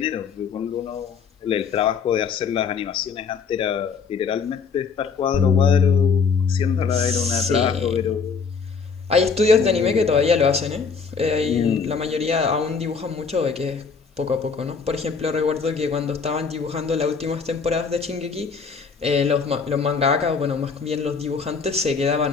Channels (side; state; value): right; quieter; 5.5 dB